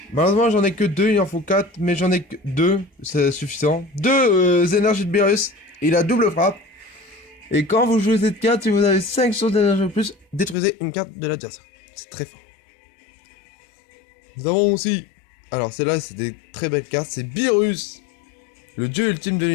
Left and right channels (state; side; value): drops out; right; at 10.6 s